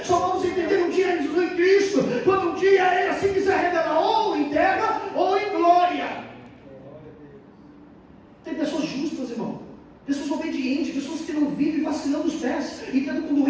Só vamos entender um dia em Cristo, quando um dia Ele assim quiser revelar, ou em terra ou em glória. Tem pessoas justas, irmão. Pessoas obedientes, pessoas que não vivem vacilando os pés e tendo com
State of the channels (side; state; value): both; identical; correlation 1.00